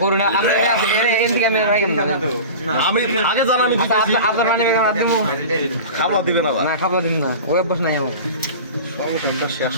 করুন আমরা এমনি ক্যামেরা রাখেন না আমি আগে জানানি দিতেছি আপনার মানে মাধ্যম খাবার দিবেন আবার না খাবো দিন না ওই বস নাই আমার সংসারটা শেষ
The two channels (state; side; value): inverted; both; correlation -0.34